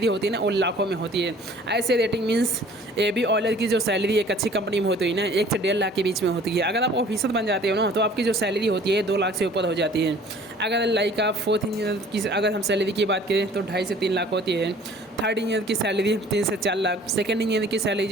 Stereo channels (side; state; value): both; normal; correlation 0.51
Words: होती है ना वो लाखों में होती है। ऐसे रेटिंग मीन्स AB ऑलर की जो सैलरी एक अच्छी कंपनी में होती है ना 1 से 1.5 लाख के बीच में होती है। अगर आप ऑफिसर बन जाते हो ना, तो आपकी जो सैलरी होती है 2 लाख से ऊपर हो जाती है। अगर लाइक आप 4th इंजीनियर की अगर हम सैलरी की बात करें तो 2.5 से 3 लाख होती है। 3rd इंजीनियर की सैलरी 3 से 4 लाख। 2nd इंजीनियर की सैलरी